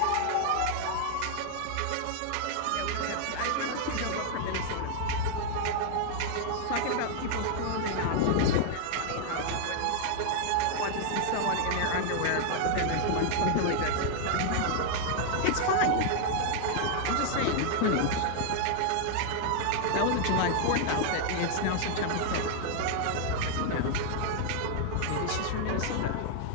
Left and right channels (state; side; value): different; both; correlation 0.00